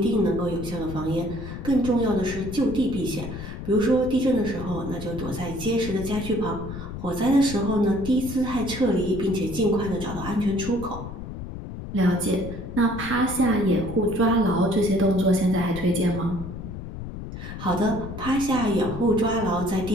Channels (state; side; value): noise; left; rumble, 9 dB below the sound